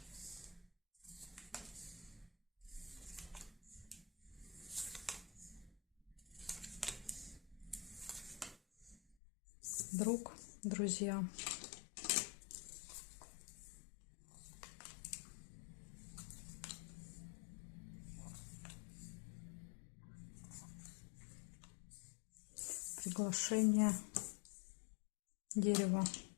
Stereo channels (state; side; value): drops out; right; at 9.2 s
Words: Друг, друзья. Приглашение. Дерево.